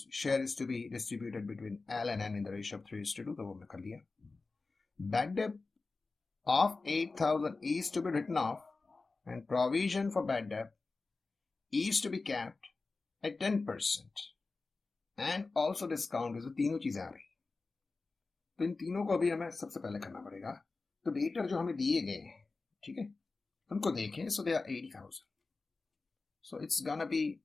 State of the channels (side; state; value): right; quieter; 3.8 dB